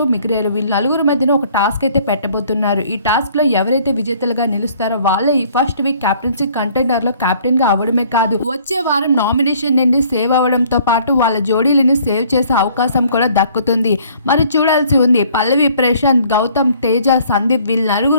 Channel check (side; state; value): both; inverted; correlation -0.58